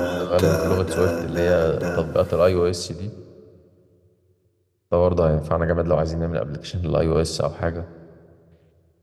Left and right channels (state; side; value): identical; both; correlation 1.00